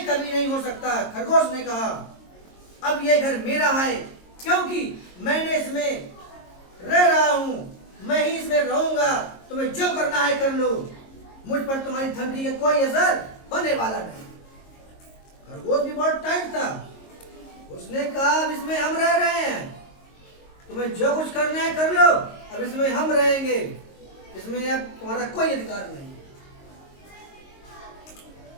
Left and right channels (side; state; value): right; late; 22 ms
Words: कभी नहीं हो सकता। खरगोश ने कहा, अब ये घर मेरा है क्योंकि मैंने इसमें रह रहा हूं। मैं ही इसमें रहूंगा। तुम्हें जो करना है कर लो। मुझ पर तुम्हारी धमकी का कोई असर होने वाला नहीं। खरगोश भी बहुत टाइट था। उसने कहा, अब इसमें हम रह रहे हैं, तुम्हें जो कुछ करना है कर लो। अब इसमें हम रहेंगे, इसमें अब तुम्हारा कोई अधिकार नहीं।